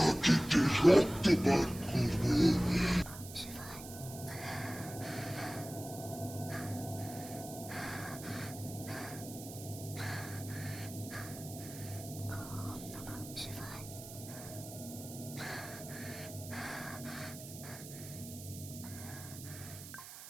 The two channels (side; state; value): right; noise; hiss, 13 dB below the sound